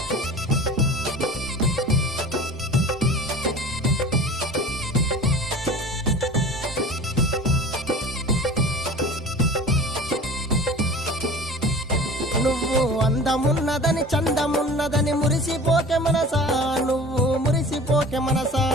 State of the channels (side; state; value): both; normal; correlation 0.40